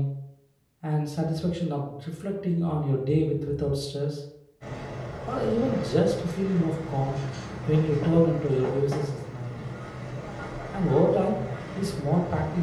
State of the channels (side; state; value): both; identical; correlation 1.00